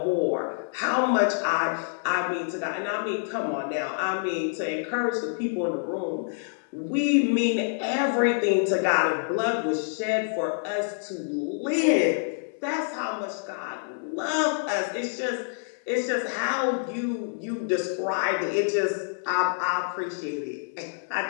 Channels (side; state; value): right; silent; digital silence